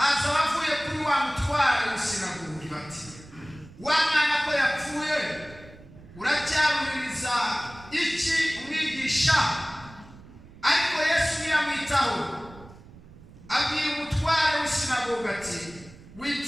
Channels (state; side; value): noise; right; rumble, 20 dB below the sound